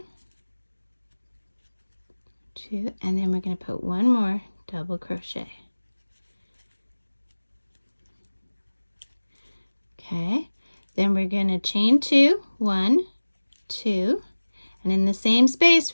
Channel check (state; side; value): inverted; both; correlation -1.00